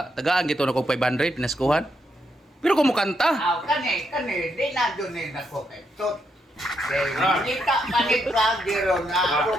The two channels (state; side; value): normal; both; correlation 0.79